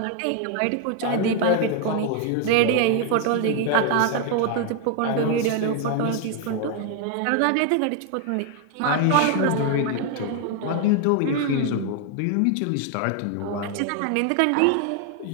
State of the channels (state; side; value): different; both; correlation 0.00